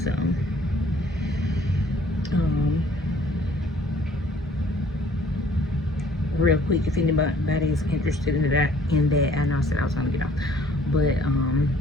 So real quick, if anybody is interested in that, I know I said I was gonna get off, but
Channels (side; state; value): both; normal; correlation 0.58